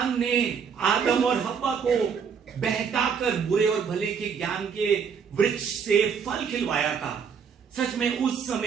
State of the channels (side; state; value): left; quieter; 6.6 dB